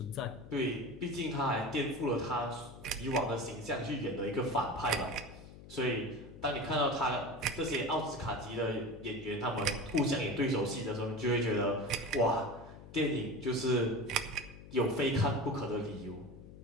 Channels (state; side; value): noise; left; hum, 16 dB below the sound